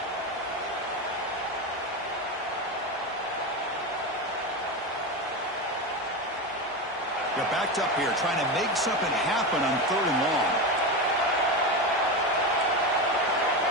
They're backed up here, trying to make something happen on 3rd and long.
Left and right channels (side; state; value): both; normal; correlation 0.18